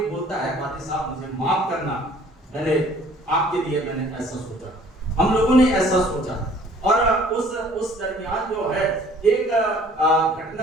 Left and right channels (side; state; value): both; normal; correlation 0.55